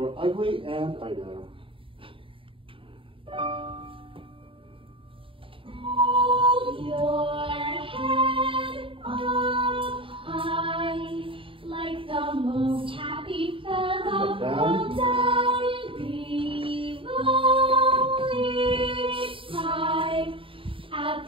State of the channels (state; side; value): late; left; 0.25 ms